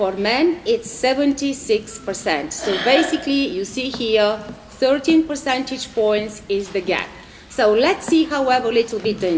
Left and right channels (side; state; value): both; identical; correlation 1.00